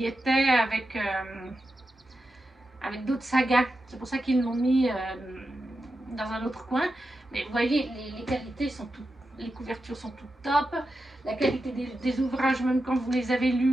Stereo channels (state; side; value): normal; both; correlation 0.90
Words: était avec d'autres sagas. C'est pour ça qu'ils l'ont mis dans un autre coin. Mais vous voyez, les qualités sont toutes, les couvertures sont toutes top. La qualité des ouvrages, même quand vous les avez